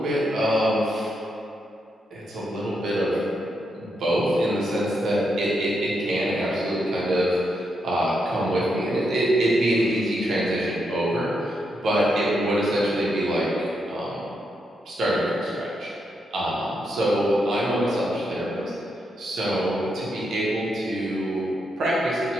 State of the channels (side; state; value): both; normal; correlation 0.82